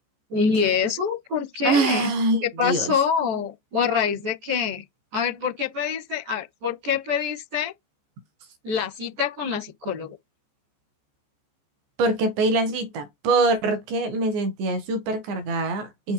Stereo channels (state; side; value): late; left; 14 ms